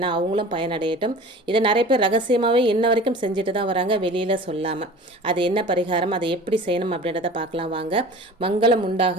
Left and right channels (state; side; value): normal; both; correlation 0.40